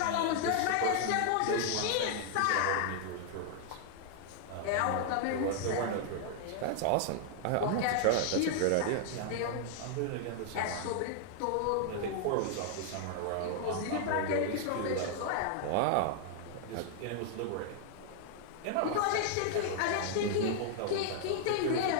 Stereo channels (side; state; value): both; different; correlation -0.01